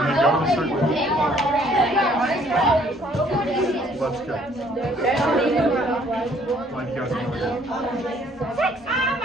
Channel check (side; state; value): both; normal; correlation 0.62